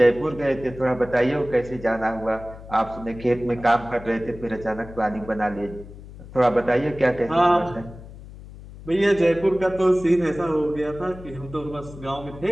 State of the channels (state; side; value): noise; left; hum, 16 dB below the sound